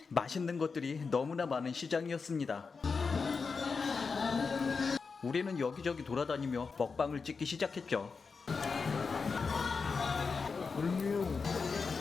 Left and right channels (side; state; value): right; quieter; 4.9 dB